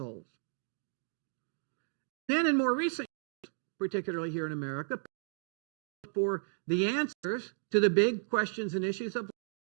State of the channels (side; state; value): left; silent; digital silence